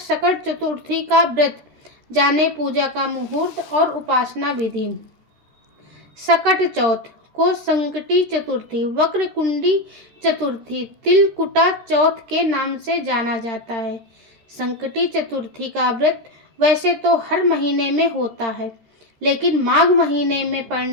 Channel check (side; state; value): left; late; 13 ms